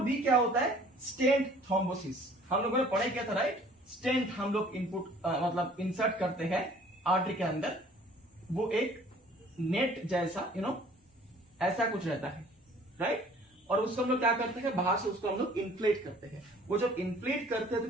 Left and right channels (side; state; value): both; normal; correlation 0.53